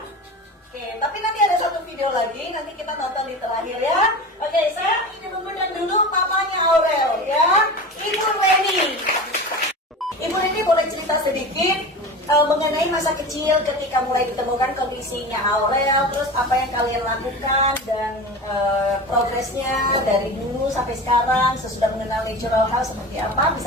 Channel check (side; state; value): both; normal; correlation 0.31